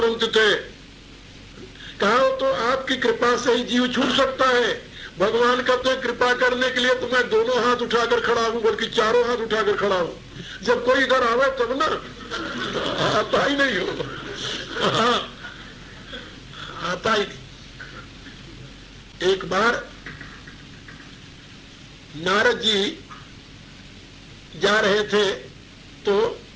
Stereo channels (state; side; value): identical; both; correlation 1.00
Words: थे। कहा तो आपकी कृपा से ही जीव छूट सकता है। भगवान कहते हैं कृपा करने के लिए तो मैं दोनों हाथ उठाकर खड़ा हूं, बल्कि चारों हाथ उठाकर खड़ा हूं। जब कोई इधर आवे तब ना, आता ही नहीं हो, आता ही नहीं। एक बार नारद जी जा रहे थे तो